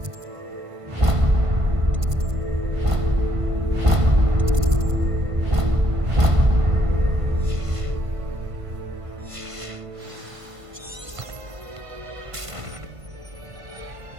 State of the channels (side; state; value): left; late; 1.5 ms